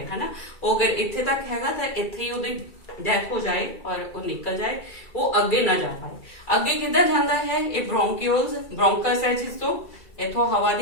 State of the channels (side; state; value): right; late; 2.3 ms